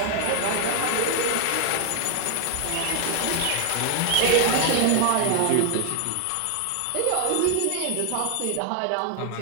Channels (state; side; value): different; both; correlation 0.00